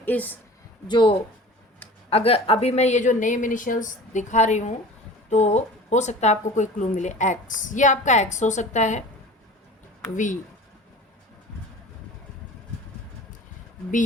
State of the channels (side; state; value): both; normal; correlation 0.40